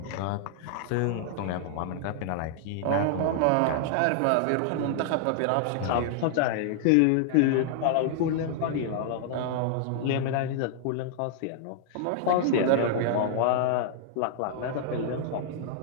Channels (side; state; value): both; different; correlation -0.01